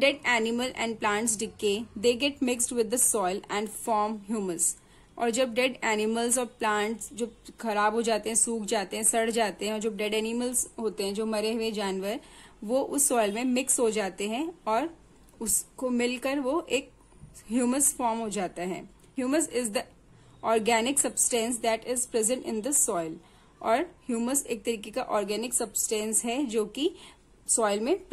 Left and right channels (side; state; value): both; identical; correlation 1.00